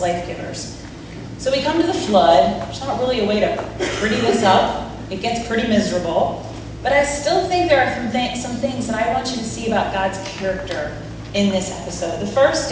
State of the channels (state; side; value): identical; both; correlation 1.00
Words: life givers. So we come to the flood. There's not really a way to pretty this up. It gets pretty miserable. But I still think there are some things that I want you to see about God's character in this episode. The first